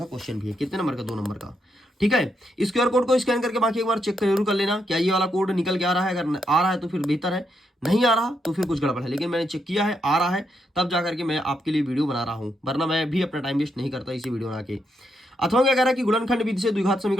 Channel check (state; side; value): normal; both; correlation 0.80